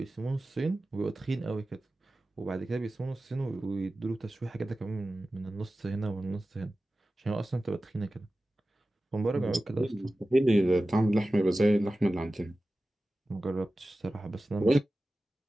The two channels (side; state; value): both; normal; correlation 0.95